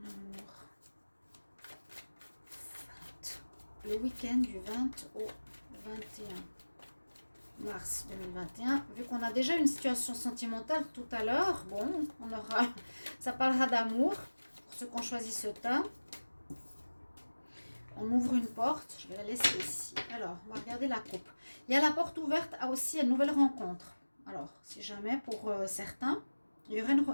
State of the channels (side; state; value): both; inverted; correlation -1.00